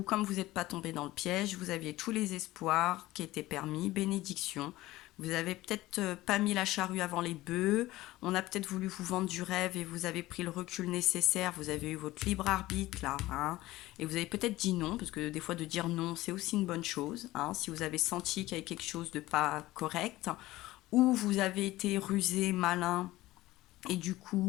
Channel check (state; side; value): quieter; right; 17.5 dB